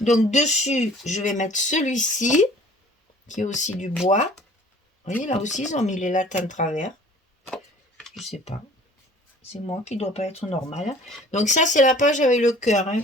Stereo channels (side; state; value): both; normal; correlation 0.50